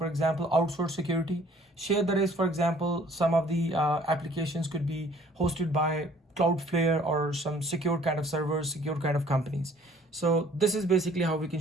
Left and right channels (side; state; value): both; normal; correlation 0.56